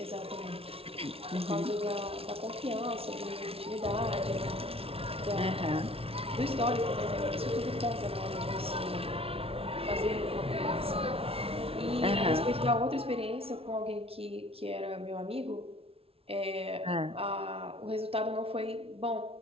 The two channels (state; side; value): late; left; 0.27 ms